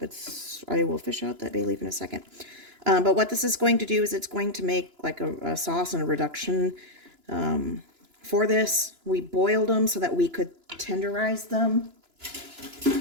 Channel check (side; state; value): left; late; 2.9 ms